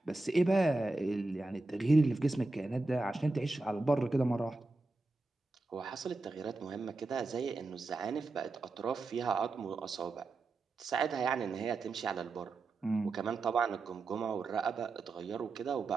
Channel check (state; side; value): quieter; left; 3.3 dB